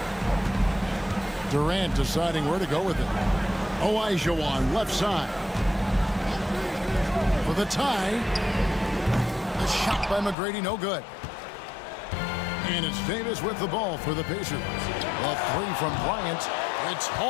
Durant deciding where to go with it. Olajuwon left side. For the tie. The shot by McGrady, no good. And it's Davis with the ball for the Pacers. A 3 from Bryant. It's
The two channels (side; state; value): right; drops out; at 10.4 s